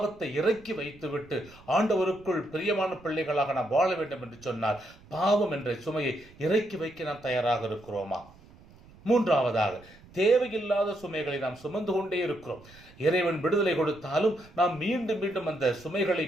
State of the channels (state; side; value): noise; right; rumble, 24 dB below the sound